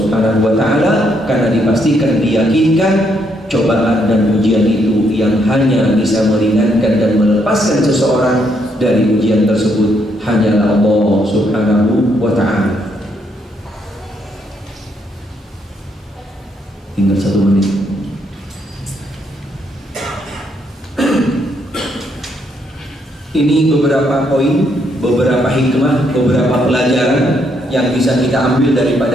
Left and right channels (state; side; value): normal; both; correlation 0.74